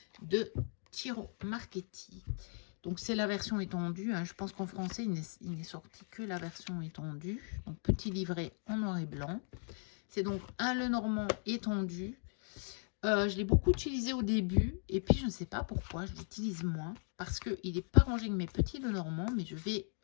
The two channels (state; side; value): silent; right; 53 dB below the other